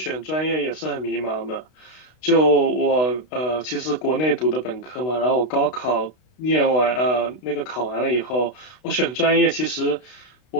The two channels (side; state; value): right; late; 32 ms